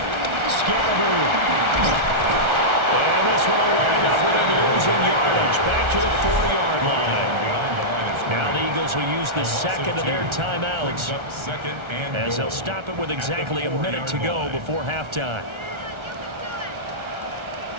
Scalaboo. And this one will wind up with him losing yardage. Back to the 4-yard line. Now the Eagles will use the 2nd of their timeouts as they'll stop it with exactly a minute to go before halftime.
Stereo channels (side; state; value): left; late; 1.3 ms